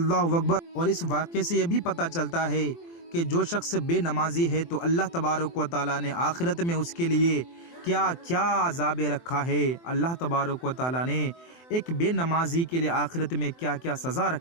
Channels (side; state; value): right; late; 24 ms